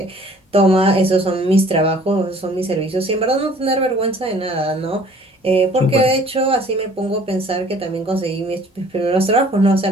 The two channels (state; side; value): normal; both; correlation 0.53